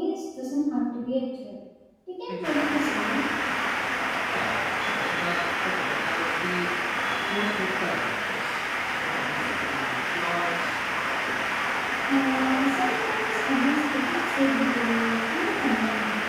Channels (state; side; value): identical; both; correlation 1.00